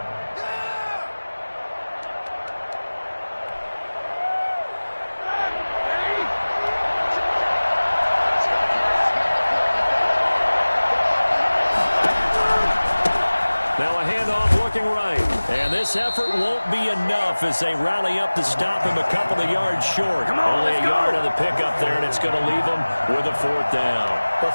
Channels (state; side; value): inverted; both; correlation -1.00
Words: Now a handoff looking right. And this effort won't be enough as they rally up to stop him a couple of yards short. Only a yard on the pickup there, and it's going to leave him with a 4th down. But